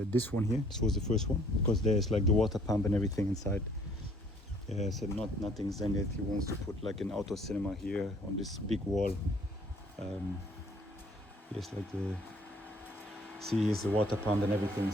this one here. This was the first one, because there's like the water pump and everything inside. So nothing's done yet. He wants to put like an outdoor cinema here on this big wall. Here's like here's the water pump and everything.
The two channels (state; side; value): normal; both; correlation 0.60